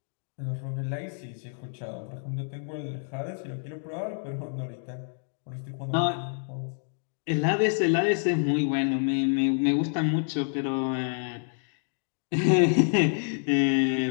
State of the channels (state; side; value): silent; right; digital silence